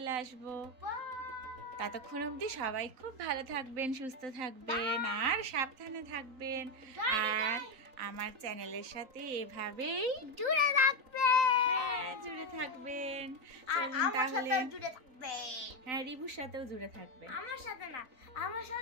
আসবো। ততক্ষণ অবধি সবাই খুব ভালো থাকবেন, সুস্থ থাকবেন আর সাবধানে থাকবেন। আর আমার চ্যানেলের সাথে এভাবেই জুড়ে থাকবেন। জুড়ে থাকবেন। আর আমার সাথেও জুড়ে থাকবেন। হ্যাঁ, রিবুর সাথেও জুড়ে থাকবেন। আমার সাথে না, আমার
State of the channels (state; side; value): late; left; 3.9 ms